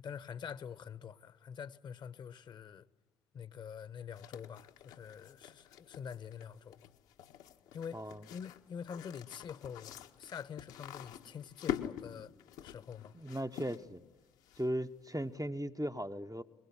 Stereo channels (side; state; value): right; quieter; 3.1 dB